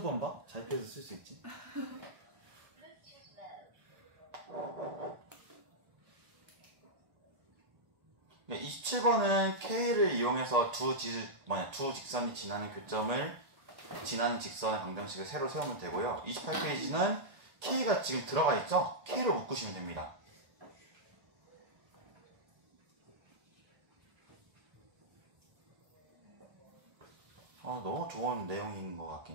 번 봐? 잘 피해서 쓸 수 있지. 네, 27번은 K를 이용해서 두 직선이 지나는 교점을 지나는 직선의 방정식을 새로 세우면 되고요. 28페이지는 K가 지금 들어가 있죠? K를 묶으시면 됩니다. 너무 좋은 내용인 것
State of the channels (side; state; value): left; late; 1.8 ms